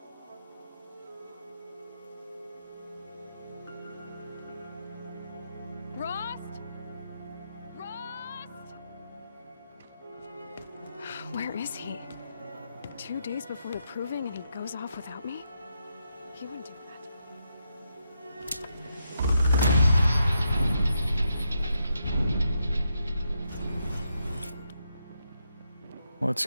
Where is he? 2 days before the proving and he goes off without me? He wouldn't do that. Let's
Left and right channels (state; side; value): inverted; both; correlation -0.82